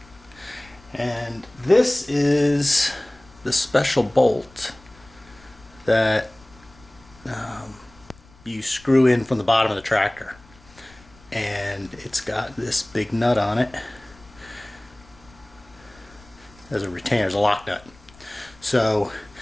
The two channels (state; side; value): noise; left; rumble, 25 dB below the sound